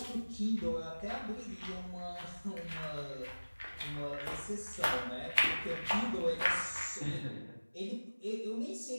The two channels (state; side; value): inverted; both; correlation -1.00